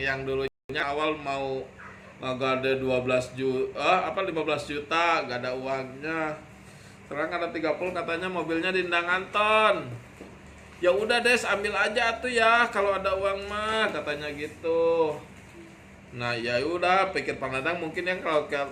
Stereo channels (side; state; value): both; identical; correlation 1.00